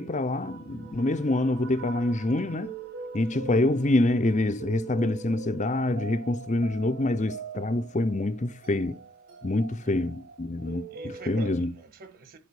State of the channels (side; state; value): both; normal; correlation 0.72